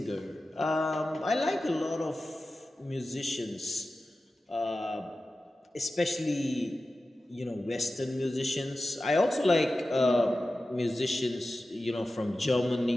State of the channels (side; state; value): both; normal; correlation 0.94